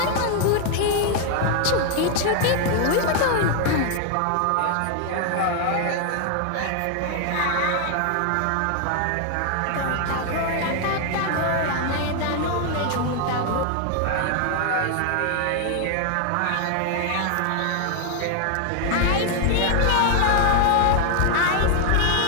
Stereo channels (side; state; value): both; different; correlation 0.00